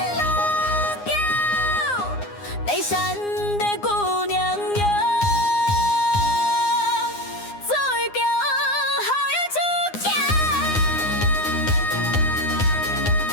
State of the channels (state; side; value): late; right; 9.7 ms